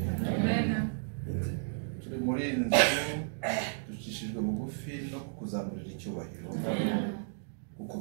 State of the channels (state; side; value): silent; left; digital silence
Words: Turi muri iyi nzu ducishijwe bugufi no kukuzamurira icyubahiro kuko